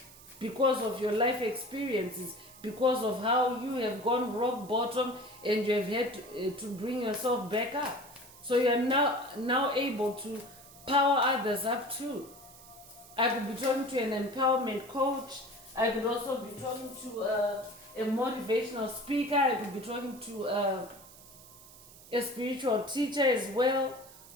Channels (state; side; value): noise; right; hiss, 20 dB below the sound